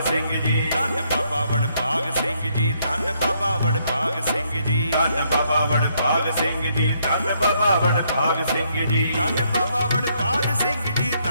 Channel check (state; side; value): inverted; both; correlation -0.72